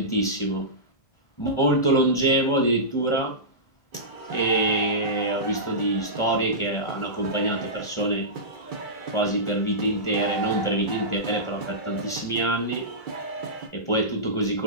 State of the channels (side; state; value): right; late; 1.4 ms